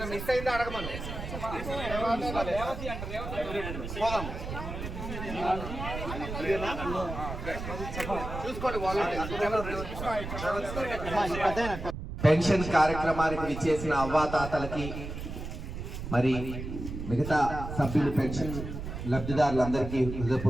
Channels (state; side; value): noise; right; rumble, 7 dB below the sound